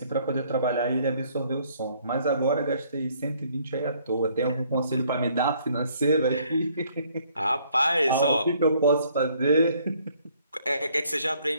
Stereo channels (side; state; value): both; inverted; correlation -0.64